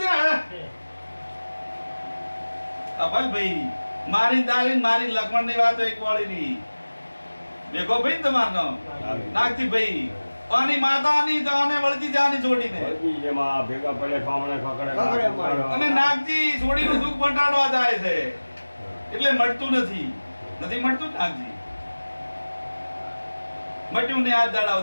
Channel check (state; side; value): inverted; both; correlation -1.00